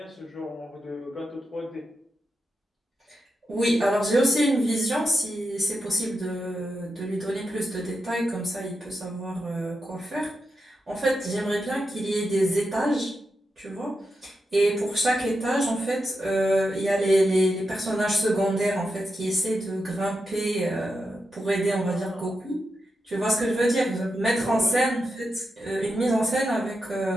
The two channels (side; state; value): both; normal; correlation 0.87